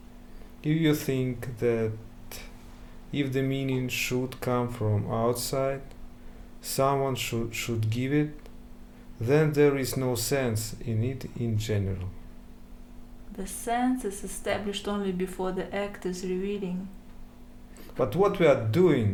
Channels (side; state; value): both; identical; correlation 1.00